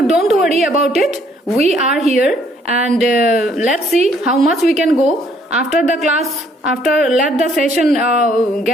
don't worry about it. We are here, and let's see how much we can go after the class. Let the session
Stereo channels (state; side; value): normal; both; correlation 0.65